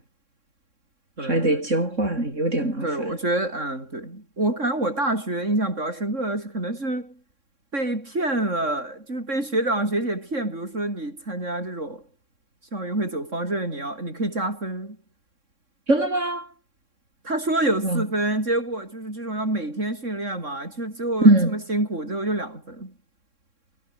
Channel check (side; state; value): left; late; 3.6 ms